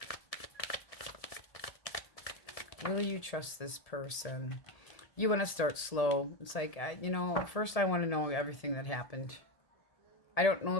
Will you trust this person? You want to start slow. It's like, first I want to know everything that happened. I don't know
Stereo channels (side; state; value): right; late; 1.8 ms